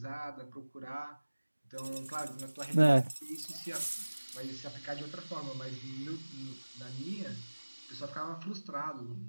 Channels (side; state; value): both; inverted; correlation -1.00